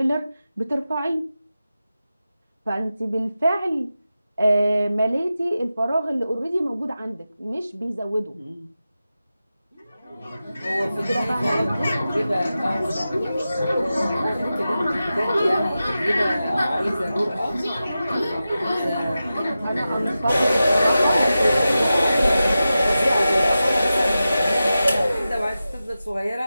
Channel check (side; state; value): both; inverted; correlation -0.93